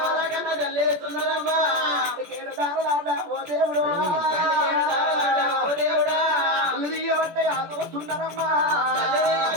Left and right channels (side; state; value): left; late; 17 ms